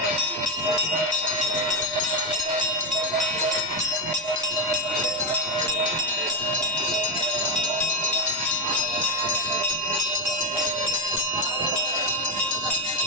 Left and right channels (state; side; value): noise; right; rumble, 28 dB below the sound